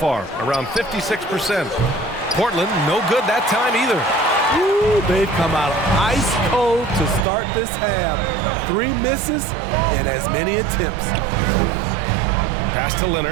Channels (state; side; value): drops out; left; at 7.2 s